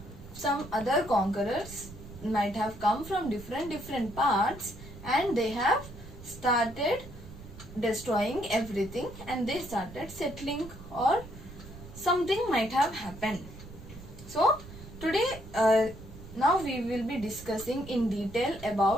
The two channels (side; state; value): right; noise; rumble, 15 dB below the sound